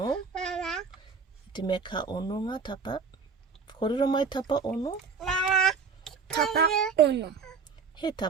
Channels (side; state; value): left; quieter; 5.6 dB